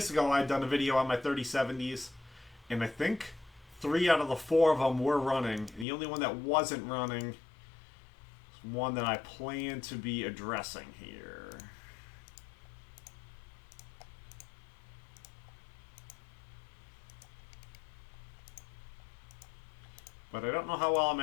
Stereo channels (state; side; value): drops out; right; at 5.9 s